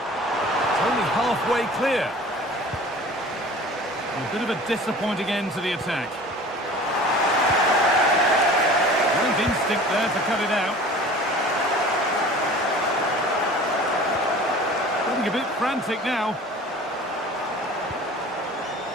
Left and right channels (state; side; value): normal; both; correlation 0.43